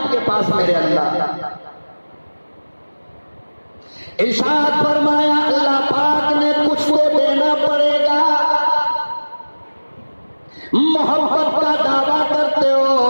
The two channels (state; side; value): inverted; both; correlation -1.00